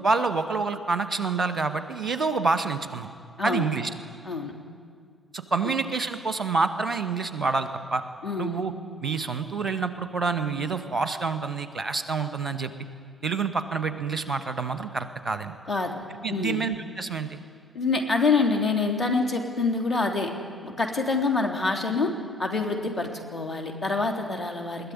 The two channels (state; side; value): normal; both; correlation 0.57